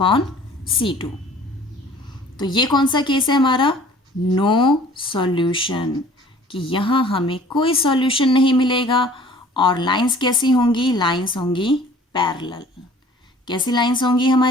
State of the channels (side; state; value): both; normal; correlation 0.51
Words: तो ये कौन सा केस है हमारा? नो सॉल्यूशन, कि यहाँ हमें कोई सॉल्यूशन नहीं मिलेगा. और लाइंस कैसी होंगी? लाइंस होंगी पैरेलल. कैसी लाइंस होंगी